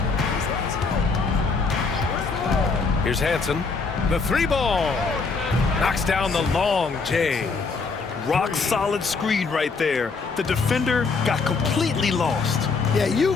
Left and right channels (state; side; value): quieter; right; 4.6 dB